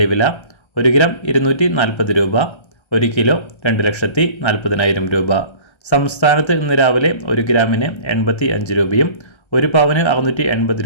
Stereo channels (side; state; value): right; late; 1.3 ms